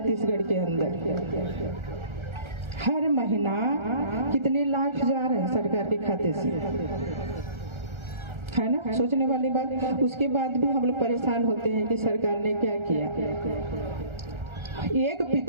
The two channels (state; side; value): late; left; 1.4 ms